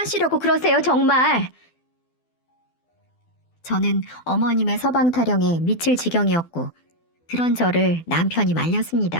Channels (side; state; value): right; late; 12 ms